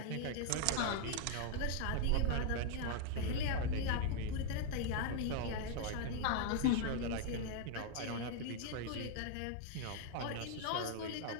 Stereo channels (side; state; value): both; different; correlation 0.00